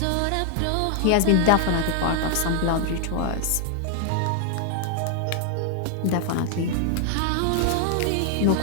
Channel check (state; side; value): different; both; correlation 0.00